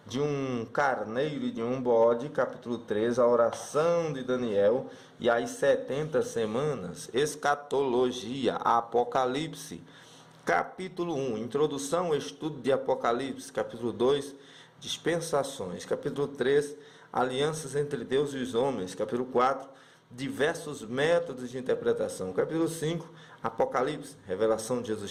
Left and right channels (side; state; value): both; identical; correlation 1.00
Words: de um carneiro e de um bode. Capítulo 3, a oração de Daniel e as 70 semanas. Escatologia, Apocalipse. Capítulo 1, introdução, estudo de Apocalipse. Capítulo 2, dispensações. Capítulo 3, alianças entre Deus e os homens. Capítulo 4, diversos métodos de interpretação. Capítulo 5, Apocalipse, revelação de